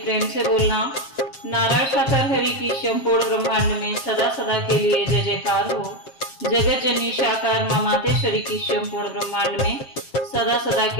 से बोलना। नारायण साकर हरि की संपूर्ण ब्रह्मांड में सदा सदा के लिए जय जयकार हो। जगत जननी साकार मां मातेश्वरी की संपूर्ण ब्रह्मांड में सदा सदा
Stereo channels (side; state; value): right; late; 7.5 ms